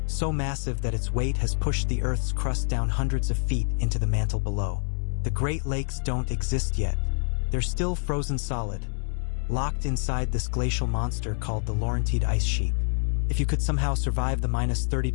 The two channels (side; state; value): right; silent; 56 dB below the other